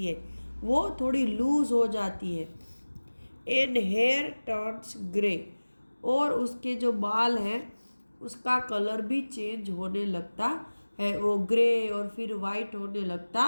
है, वो थोड़ी लूज हो जाती है। एंड हेयर टर्न्स ग्रे, और उसके जो बाल हैं उसका कलर भी चेंज होने लगता है, वो ग्रे और फिर वाइट होने लगता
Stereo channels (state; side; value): inverted; both; correlation -1.00